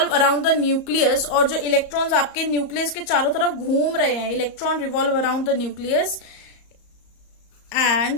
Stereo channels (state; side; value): late; right; 34 ms